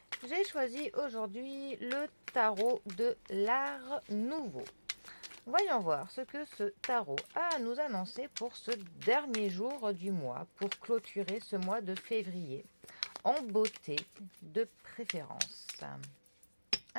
j'ai choisi aujourd'hui le tarot de l'art nouveau. Voyons voir ce que ce tarot a à nous annoncer pour ce dernier jour du mois, pour clôturer ce mois de février, en beauté de préférence.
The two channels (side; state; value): both; inverted; correlation -1.00